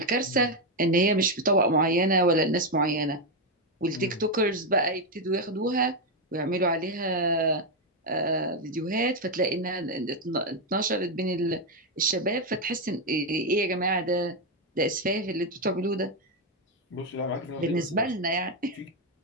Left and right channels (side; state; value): both; normal; correlation 0.04